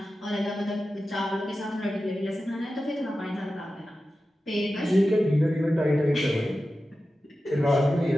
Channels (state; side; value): normal; both; correlation 0.93